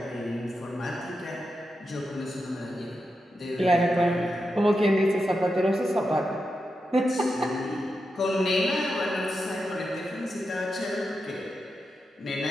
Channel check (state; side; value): normal; both; correlation 0.88